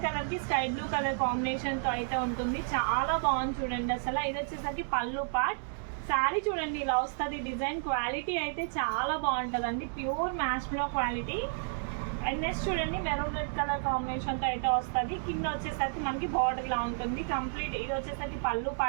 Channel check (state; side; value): silent; left; digital silence